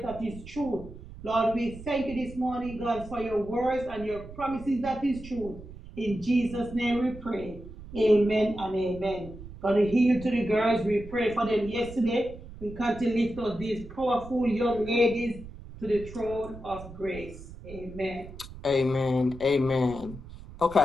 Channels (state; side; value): noise; right; rumble, 15 dB below the sound